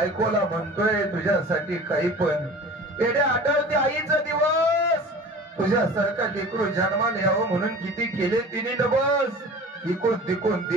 म्हणतोय तुझ्यासाठी काही पण. एवढे आठवते आईचा दिवस तुझ्यासारखा लेकरू जन्माला यावं म्हणून किती केले तिने डबस. इकून तिकून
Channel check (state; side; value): normal; both; correlation 0.40